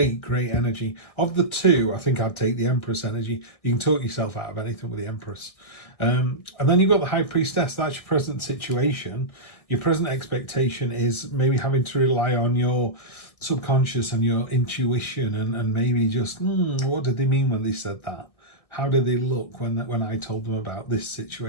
energy. Of the two, I think I'd take the Empress energy. You can talk yourself out of anything with the Empress. And then you've got the High Priestess. That's your present situation. Your present expectation is maybe having to rely on your subconscious and your intuition, and maybe just, what did they mean when they said that? How did they look when I told them about this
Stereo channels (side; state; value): right; late; 1.6 ms